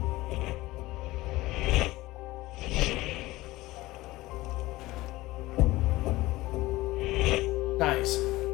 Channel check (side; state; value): right; quieter; 18.7 dB